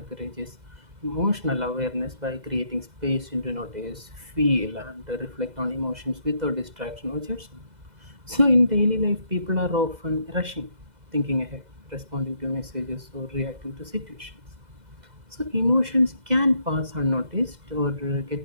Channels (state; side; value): late; left; 2.0 ms